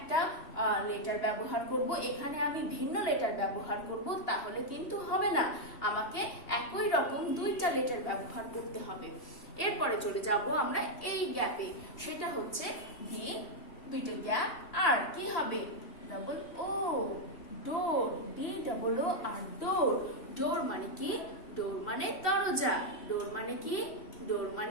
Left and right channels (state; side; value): late; right; 3.1 ms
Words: লেটার ব্যবহার করব, এখানে আমি ভিন্ন লেটার ব্যবহার করব, তাহলে কিন্তু হবে না। আমাকে একই রকম দুইটা লেটার ব্যবহার করতে হবে। এরপরে চলে যাব আমরা এই গ্যাপে, সেটা হচ্ছে ডি, দুইটা গ্যাপ, আর কি হবে? ডাবল ও, ডোর, ডি ডাবল ও আর ডোর। ডোর মানে কি? ডোর মানে দরজা। ডোর মানে কি? ডোর